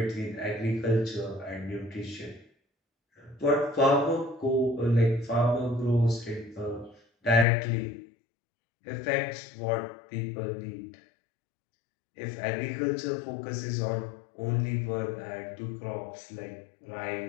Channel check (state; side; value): drops out; right; at 7.5 s